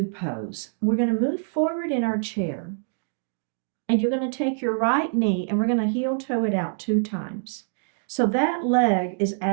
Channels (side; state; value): left; silent; digital silence